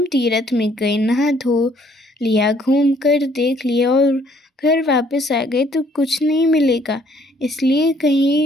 तीर्थ में गए, नहा धो लिया, घूम कर देख लिया और घर वापस आ गए तो कुछ नहीं मिलेगा। इसलिए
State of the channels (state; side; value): normal; both; correlation 0.63